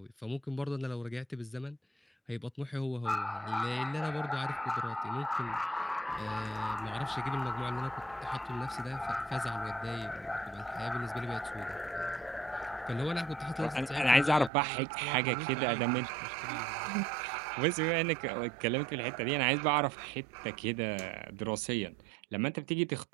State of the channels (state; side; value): drops out; left; at 14.5 s